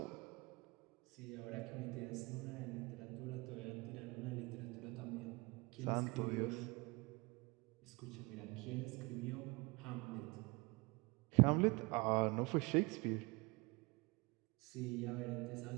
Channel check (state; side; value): quieter; left; 26.2 dB